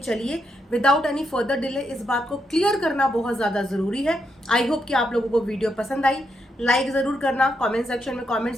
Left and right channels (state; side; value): normal; both; correlation 0.81